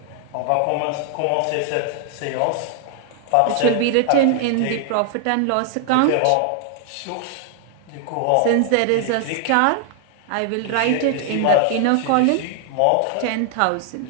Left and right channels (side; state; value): both; different; correlation 0.00